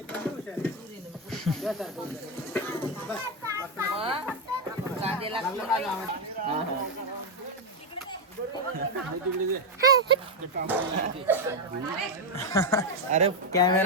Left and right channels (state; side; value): normal; both; correlation 0.04